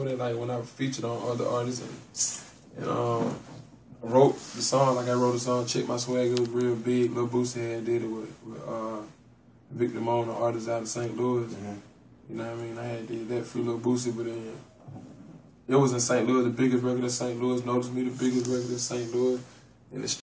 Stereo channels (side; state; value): both; identical; correlation 1.00